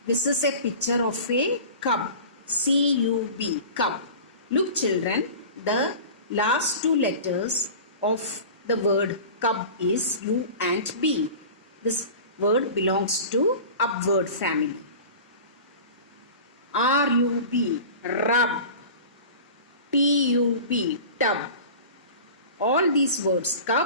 This is a picture of a cub. C-U-B, cub. Look children, the last two letters of the word cub is U and B. This word belongs to upward family. R-U-B, rub. T-U-B, tub. All these words,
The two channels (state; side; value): inverted; both; correlation -0.38